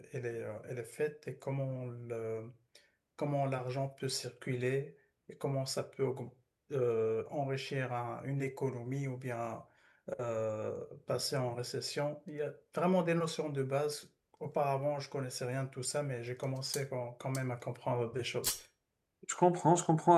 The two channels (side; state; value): both; identical; correlation 1.00